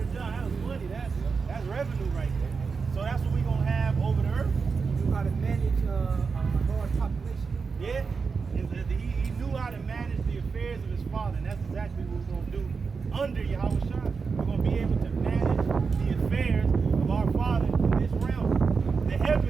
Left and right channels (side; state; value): left; quieter; 5.1 dB